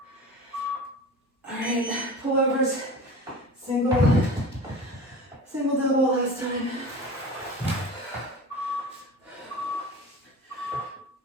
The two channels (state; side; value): normal; both; correlation 0.35